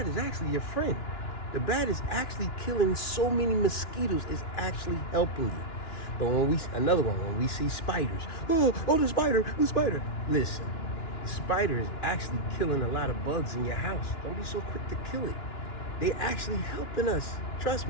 is actually your friend. The bat is actually killing so many mosquitoes, it's actually helping you. But when when we see spiders, oh, the spider. Listen, the spider is actually killing a lot of bugs in your house. Don't be so quick to kill it. They're actually helping us, trust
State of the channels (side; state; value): right; late; 2.9 ms